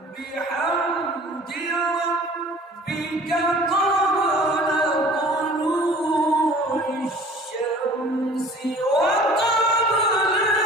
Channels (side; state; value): both; normal; correlation 0.47